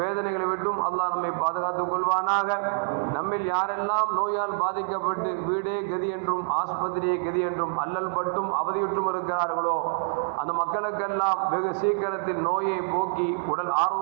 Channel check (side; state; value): left; silent; digital silence